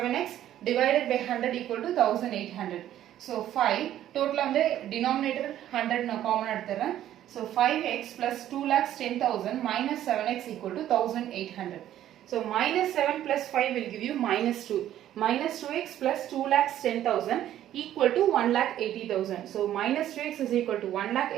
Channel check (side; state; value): left; quieter; 12.1 dB